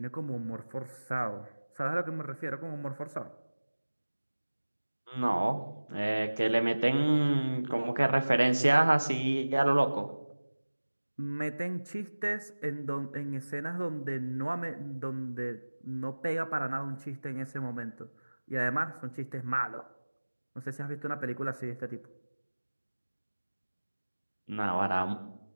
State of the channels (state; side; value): inverted; both; correlation -1.00